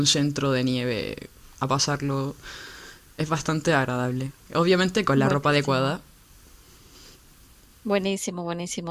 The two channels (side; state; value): both; identical; correlation 1.00